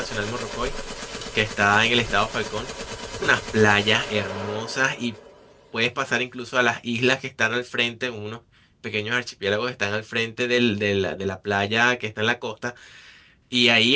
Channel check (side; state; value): both; identical; correlation 1.00